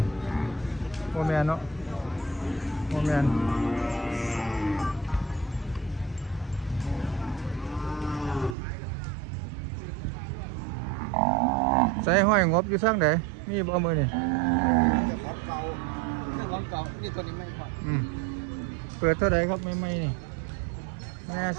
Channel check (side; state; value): left; drops out; at 8.6 s